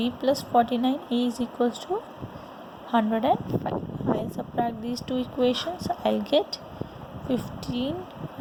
plus 49a is equals to 105. I'll subtract these two equations. I'll get 15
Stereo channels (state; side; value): identical; both; correlation 1.00